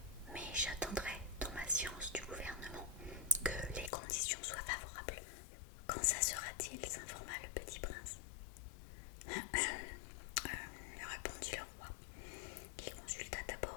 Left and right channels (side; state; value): right; drops out; at 3.9 s